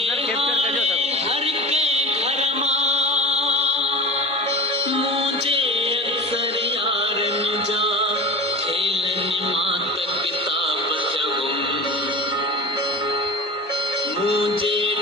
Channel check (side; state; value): both; normal; correlation 0.32